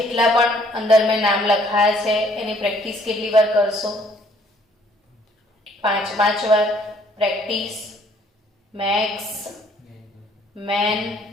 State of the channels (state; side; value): normal; both; correlation 0.62